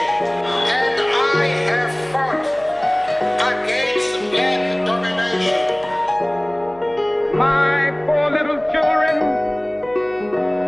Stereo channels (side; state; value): left; noise; hum, 27 dB below the sound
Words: and I have fought against black domination. My poor little children